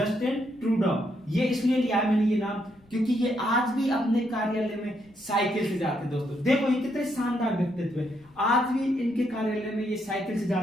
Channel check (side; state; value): left; noise; rumble, 30 dB below the sound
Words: ट्रूडो। ये इसलिए लिया है मैंने ये नाम क्योंकि ये आज भी अपने कार्यालय में साइकिल से जाते हैं। दोस्तों देखो, ये कितने शानदार व्यक्तित्व है, आज भी इनके कार्यालय में ये साइकिल से